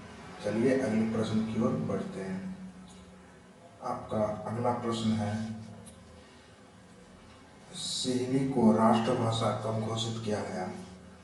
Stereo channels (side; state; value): both; identical; correlation 1.00